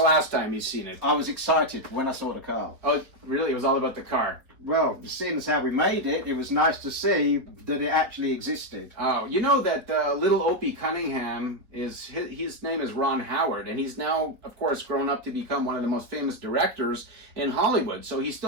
time you've seen it. I was excited when I saw the car. Oh, really? It was all about the car. Well, seeing as how we made it, it was nice to see that it actually existed. Oh, you know that little Opie Cunningham, his name is Ron Howard, and he's now, of course, grown up to become one of the most famous directors in Hollywood. So he's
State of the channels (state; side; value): late; left; 4.2 ms